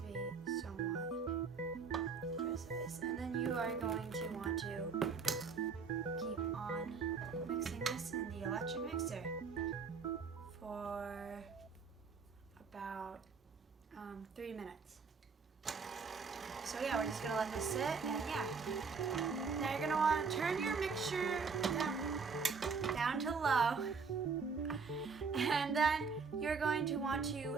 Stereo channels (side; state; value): left; quieter; 5.3 dB